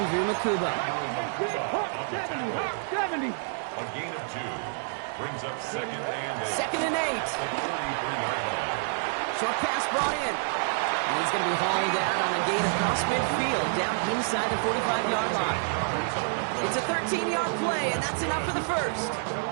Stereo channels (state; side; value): silent; left; digital silence